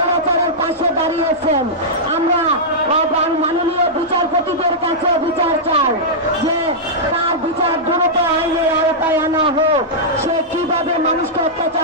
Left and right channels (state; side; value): normal; both; correlation -0.11